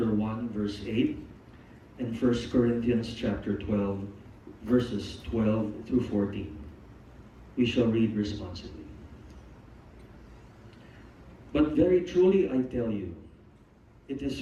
1, verse 8, and 1 Corinthians chapter 12, verses 12 through 14. We shall read responsibly. But very truly I tell you, it is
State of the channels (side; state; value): both; identical; correlation 1.00